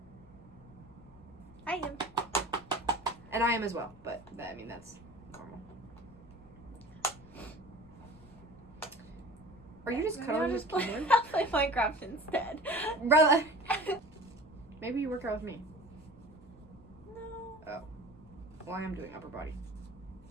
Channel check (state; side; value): noise; left; rumble, 25 dB below the sound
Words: I am. And I am as well, but I mean that's normal. Are you just Maybe cuddling I'll his just play, keyboard? I'll play Minecraft instead. Brother. Maybe you work out with me. No. Well, I am doing upper body.